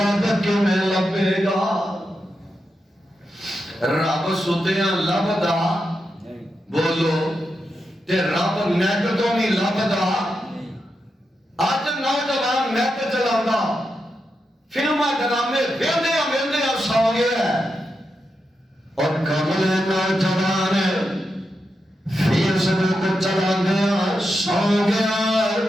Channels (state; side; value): normal; both; correlation 0.87